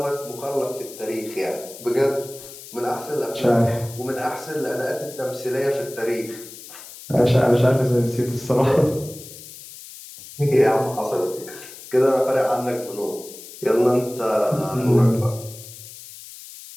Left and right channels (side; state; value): left; noise; hiss, 16 dB below the sound